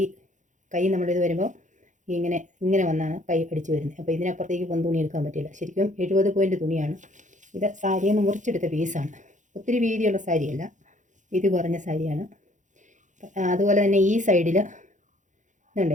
കൈ നമ്മളിത് വരുമ്പോൾ ഇങ്ങനെ വന്നാണ് കൈ അടിച്ച് വരുന്നത്. അപ്പോൾ ഇതിനപ്പുറത്തേക്ക് തുണി എടുക്കാൻ പറ്റില്ല. ശരിക്കും 70 പോയിൻ്റ് തുണിയാണ്. ഇത് സാരിയിൽ നിന്ന് മുറിച്ചെടുത്ത പീസാണ്. ഒത്തിരി വീതിയുള്ള സാരിയല്ല, വീതി കുറഞ്ഞ സാരിയാണ്. അതുപോലെ തന്നെ ഈ സൈഡിൽ ഇതുണ്ട്,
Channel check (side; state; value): left; late; 0.36 ms